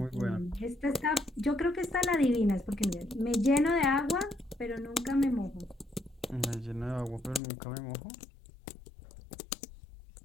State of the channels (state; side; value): drops out; right; at 7.4 s